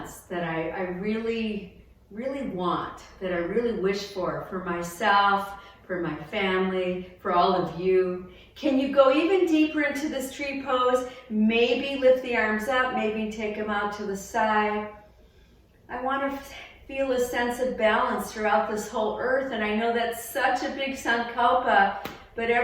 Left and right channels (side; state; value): both; identical; correlation 1.00